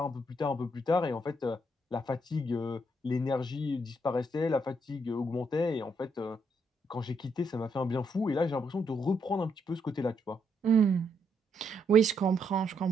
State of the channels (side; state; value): both; normal; correlation 0.75